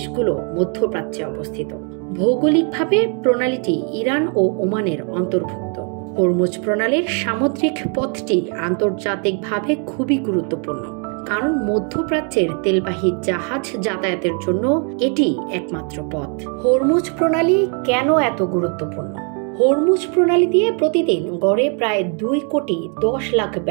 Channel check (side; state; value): left; quieter; 39.0 dB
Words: মধ্যপ্রাচ্যে অবস্থিত। ভৌগোলিকভাবে প্রণালীটি ইরান ও ওমানের অন্তর্ভুক্ত। হরমুজ প্রণালীর সামুদ্রিক পথটি আন্তর্জাতিকভাবে খুবই গুরুত্বপূর্ণ, কারণ মধ্যপ্রাচ্যের তেলবাহী জাহাজ যাতায়াতের জন্য এটি একমাত্র পথ। হরমুজ প্রণালী কেন এত গুরুত্বপূর্ণ? হরমুজ প্রণালী দিয়ে প্রতিদিন গড়ে প্রায় 2,10,00,000